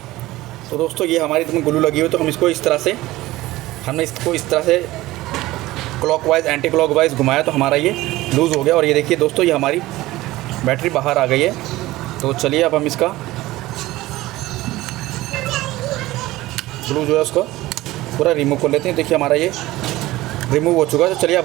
तो दोस्तों, ये हमारी इसमें ग्लू लगी हुई, तो हम इसको इस तरह से, हमने इसको इस तरह से क्लॉकवाइज एंटी क्लॉकवाइज घुमाया तो हमारा ये लूज़ हो गया। और ये देखिए दोस्तों, ये हमारी बैटरी बाहर आ गई है। तो चलिए अब हम इसका ग्लू जो है उसको पूरा रिमूव कर लेते हैं। देखिए हमारा ये रिमूव हो चुका है। तो चलिए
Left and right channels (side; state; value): left; quieter; 17.7 dB